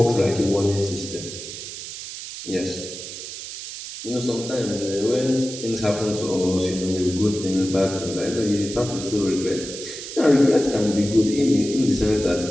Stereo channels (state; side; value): noise; right; hiss, 10 dB below the sound